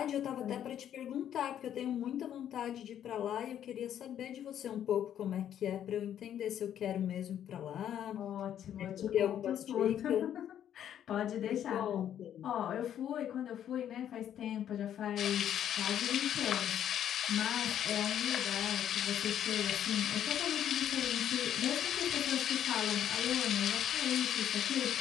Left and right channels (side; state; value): right; quieter; 10.2 dB